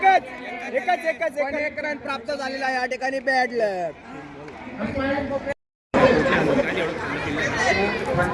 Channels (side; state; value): both; identical; correlation 1.00